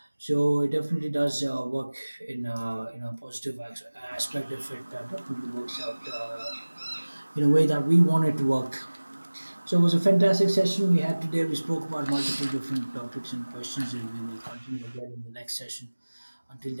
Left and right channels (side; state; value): both; inverted; correlation -1.00